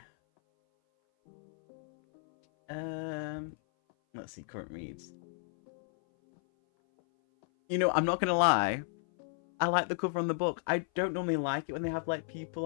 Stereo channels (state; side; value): silent; right; 56 dB below the other